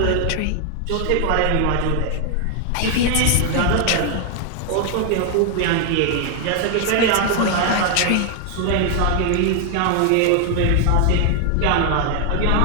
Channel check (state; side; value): different; both; correlation 0.00